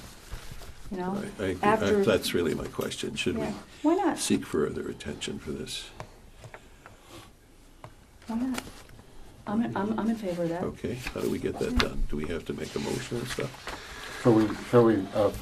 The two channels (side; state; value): both; identical; correlation 1.00